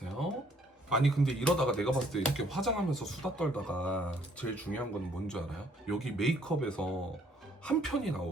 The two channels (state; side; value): normal; both; correlation 0.64